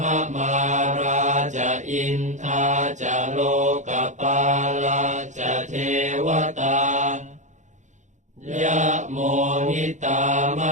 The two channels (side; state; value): left; late; 0.35 ms